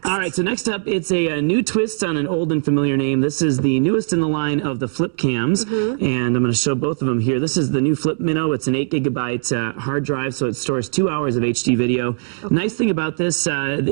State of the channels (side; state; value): left; silent; digital silence